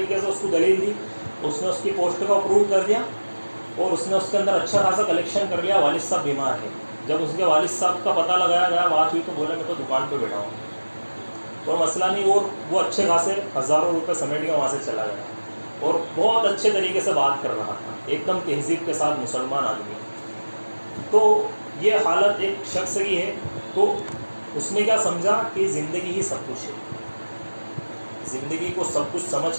سے اس کو دلیل دی، اس نے اس کی پوسٹ کو اپروو کر دیا، اور اس نے اس کے اندر اچھا خاصا کلیکشن کر لیا۔ والد صاحب بیمار ہے، جب اس کے والد صاحب کا پتہ لگایا گیا، بات ہوئی، تو بولے میں تو دکان پہ بیٹھا ہوں، کوئی مسئلہ نہیں، اور وہ اچھے خاصے ہزاروں روپے سمیٹ کے وہاں سے چلا گیا، اور بہت اچھے طریقے سے بات کر رہا تھا، ایک دم تہذیب کے ساتھ مسلمان آدمی۔ تو یہ حالت ایک شخص کی ہے، تو اس نے کیا سمجھا کہ زندگی ہی سب کچھ ہے، زندگی کو سب کچھ سمجھ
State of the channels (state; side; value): inverted; both; correlation -1.00